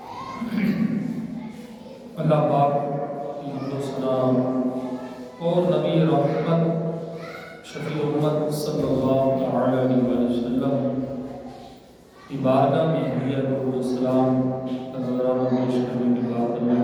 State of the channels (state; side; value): identical; both; correlation 1.00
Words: اللہ پاک کی حمد و ثنا اور نبی رحمت شفیع امت صلی اللہ تعالی علیہ وسلم کی بارگاہ میں ہدیہ درود و سلام کا نذرانہ پیش کرنے کے بعد اللہ